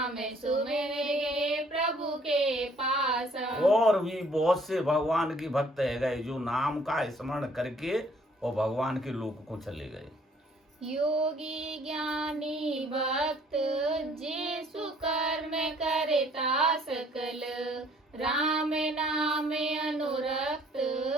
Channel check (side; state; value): both; normal; correlation 0.60